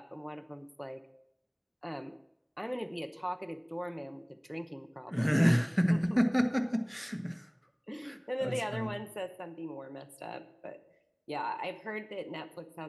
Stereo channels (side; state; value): both; identical; correlation 1.00